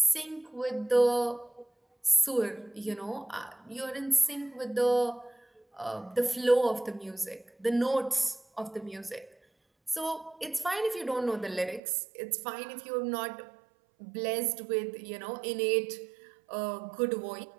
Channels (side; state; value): left; drops out; at 11.8 s